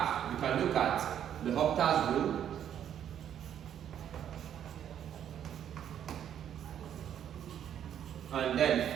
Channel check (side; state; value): left; quieter; 9.7 dB